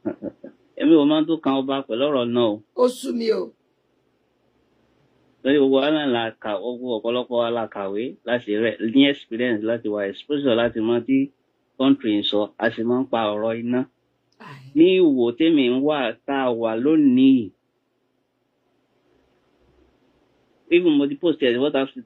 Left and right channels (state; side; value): identical; both; correlation 1.00